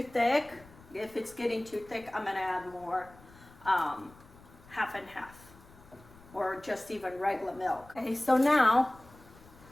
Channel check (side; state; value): left; noise; rumble, 23 dB below the sound